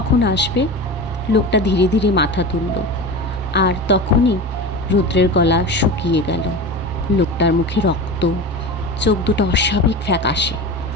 আসবে? লোকটা ধীরে ধীরে মাথা তুলল, আর তখনই রুদ্রের গলা শুকিয়ে গেল। লোকটার মুখে রক্ত, চোখ দুটো অস্বাভাবিক ফ্যাকাশে,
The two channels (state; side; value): normal; both; correlation 0.29